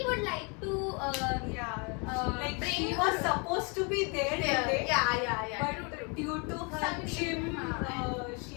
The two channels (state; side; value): quieter; right; 32.7 dB